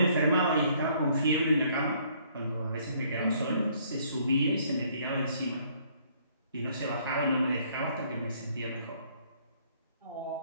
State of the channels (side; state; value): both; inverted; correlation -0.63